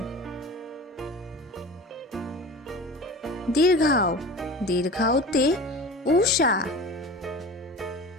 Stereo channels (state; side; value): normal; both; correlation 0.36